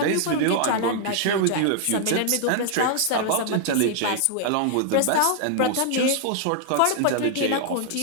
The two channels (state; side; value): different; both; correlation 0.00